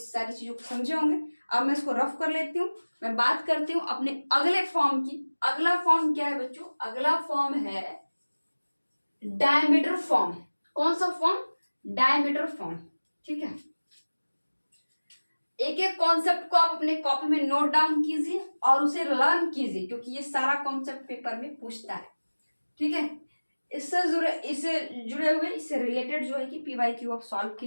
सारी चीजों को समझे होंगे। अब मैं इसको रफ कर लेती हूँ, मैं बात करती हूँ अपने अगले फॉर्म की। अगला फॉर्म क्या है बच्चों, अगला फॉर्म है डायमीटर फॉर्म। कौन सा फॉर्म, डायमीटर फॉर्म। ठीक है, एक एक कॉन्सेप्ट को आप अपने कॉपी में नोट डाउन कीजिए और उसे लर्न कीजिए, क्योंकि ये सारा कॉन्सेप्ट पेपर में पूछता है। ठीक है, इससे जुड़े हुए, इससे रिलेटेड जो है कि PYQ आप सॉल्व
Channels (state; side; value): inverted; both; correlation -1.00